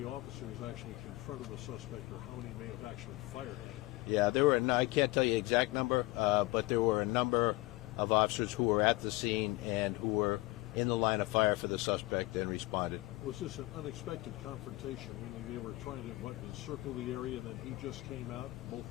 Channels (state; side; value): quieter; right; 21.0 dB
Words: officers actually confronted the suspect, or how many may have actually fired at him? Yeah, there were. I can't tell you the exact number, but there were a number of officers who were at the scene and who were in the line of fire for the suspect and responded. Was this an unexpected confrontation, meaning they were trying to circle the area and then he just came out?